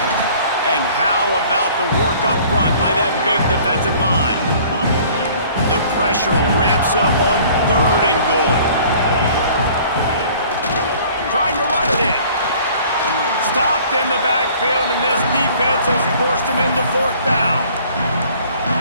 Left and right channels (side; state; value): both; inverted; correlation -0.52